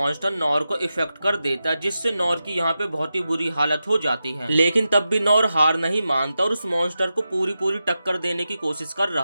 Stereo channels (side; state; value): both; inverted; correlation -0.90